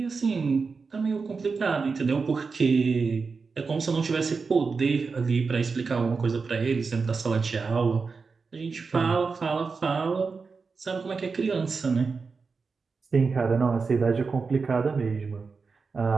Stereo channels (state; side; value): quieter; left; 4.8 dB